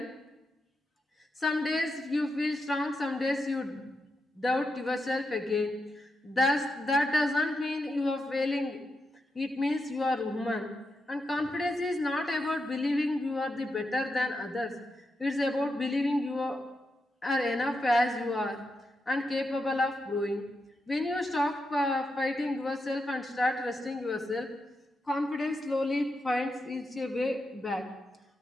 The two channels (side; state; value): both; normal; correlation 0.86